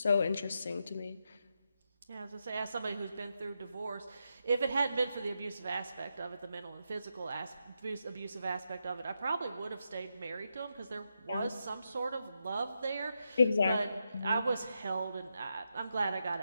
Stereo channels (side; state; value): both; inverted; correlation -0.85